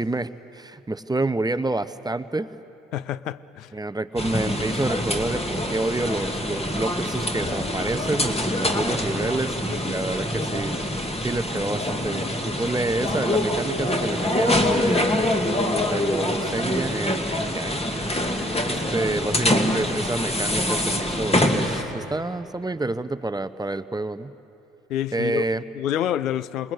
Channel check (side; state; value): both; normal; correlation 0.64